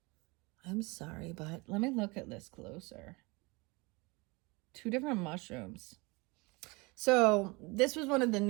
I'm sorry, but let me look at this closer. 2 different mushrooms. So this was one of the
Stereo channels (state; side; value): quieter; left; 26.1 dB